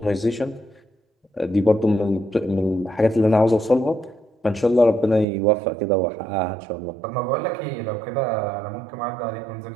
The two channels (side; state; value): left; drops out; at 5.2 s